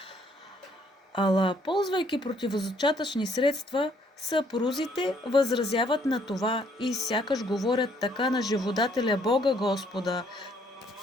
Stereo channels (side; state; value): both; normal; correlation 0.66